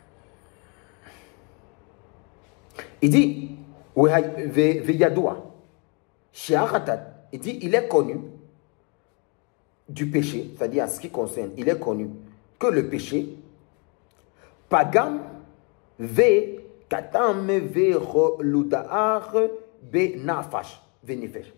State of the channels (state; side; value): quieter; right; 34.3 dB